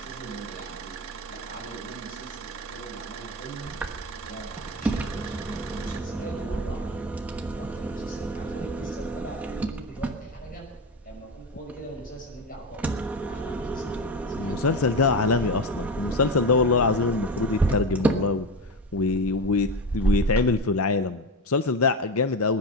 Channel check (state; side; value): normal; both; correlation 0.20